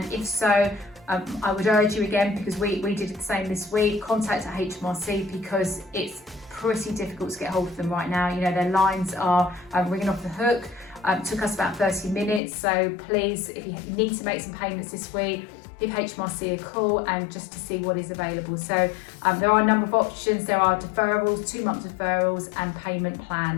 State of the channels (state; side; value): drops out; right; at 12.4 s